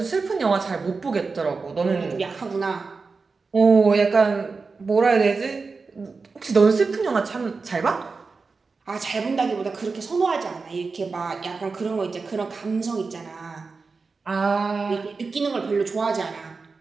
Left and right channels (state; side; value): quieter; left; 4.4 dB